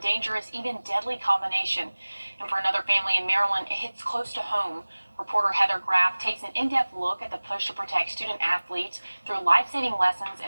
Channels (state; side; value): inverted; both; correlation -1.00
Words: even deadly combination. And for another family in Maryland, it hits close to home. Reporter Heather Graff takes an in-depth look at the push to protect student athletes through life-saving lessons